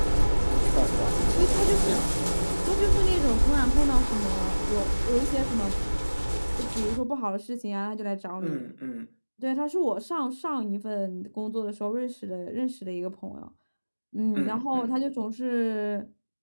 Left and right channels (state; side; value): inverted; both; correlation -1.00